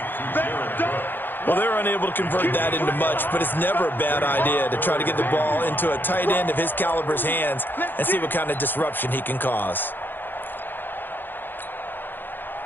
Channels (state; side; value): late; right; 0.094 ms